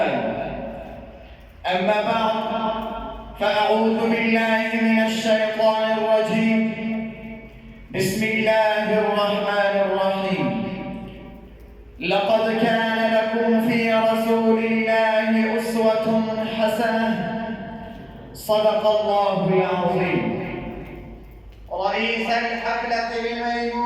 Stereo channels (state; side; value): identical; both; correlation 1.00